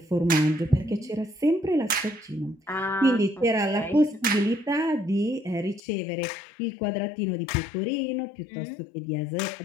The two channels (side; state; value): right; drops out; at 5.8 s